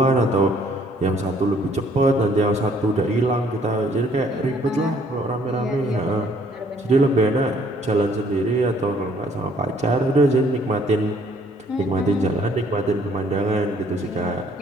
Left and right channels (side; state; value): both; normal; correlation 0.62